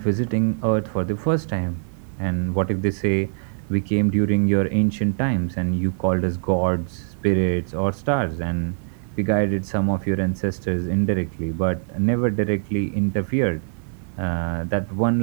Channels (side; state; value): left; silent; 63 dB below the other